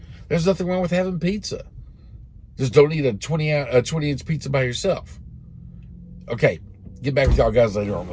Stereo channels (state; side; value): identical; both; correlation 1.00